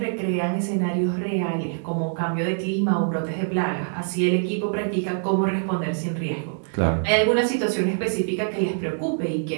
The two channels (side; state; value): left; silent; digital silence